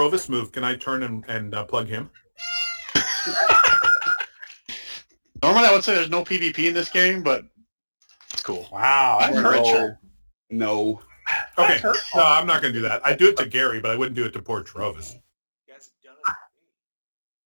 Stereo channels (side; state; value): both; inverted; correlation -1.00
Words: move, can I turn and plug him? Normally I would say there's no PvP in this game, but it's cool. Wow, that's We're in hurtful. Richard. No. Okay. That's hurtful. No, I'm not going to do that. I'd do it to Gary, but I wouldn't do it to poor Trovis. You guys have